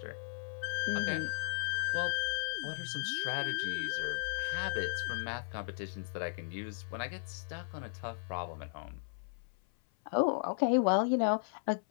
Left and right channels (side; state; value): right; silent; 54 dB below the other